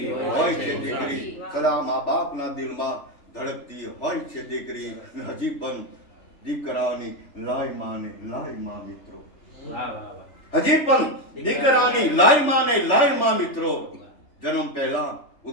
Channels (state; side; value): late; right; 3.4 ms